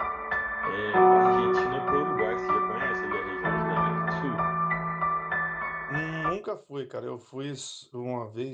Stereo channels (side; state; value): both; identical; correlation 1.00